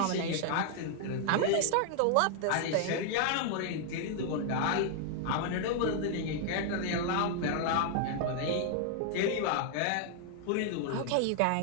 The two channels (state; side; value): different; both; correlation 0.00